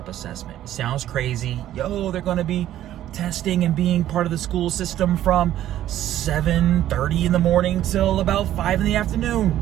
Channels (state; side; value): quieter; left; 12.6 dB